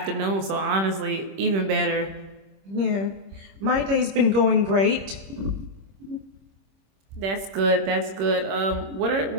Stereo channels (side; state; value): left; late; 26 ms